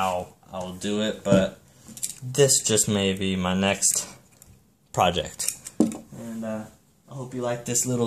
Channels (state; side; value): identical; both; correlation 1.00